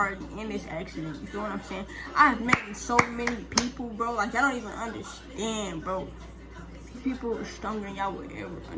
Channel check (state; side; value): identical; both; correlation 1.00